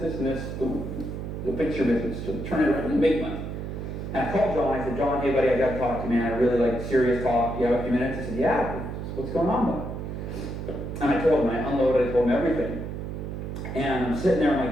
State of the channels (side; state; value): right; noise; hum, 6 dB below the sound